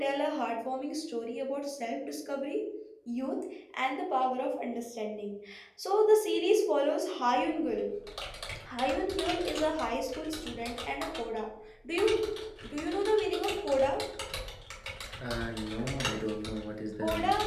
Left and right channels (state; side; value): identical; both; correlation 1.00